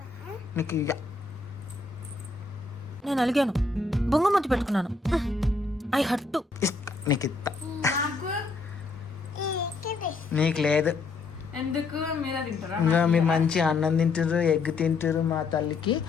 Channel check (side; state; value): right; quieter; 3.8 dB